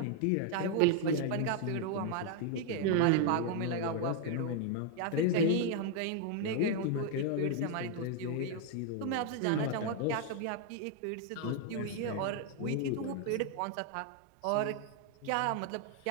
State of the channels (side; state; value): both; different; correlation 0.00